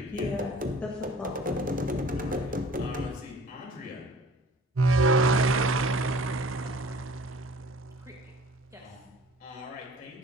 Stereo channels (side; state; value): both; normal; correlation 0.48